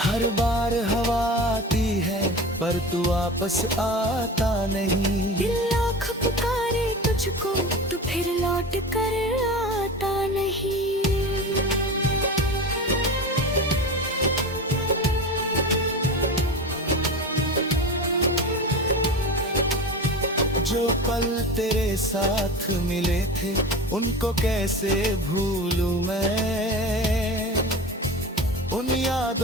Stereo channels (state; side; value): normal; both; correlation 0.30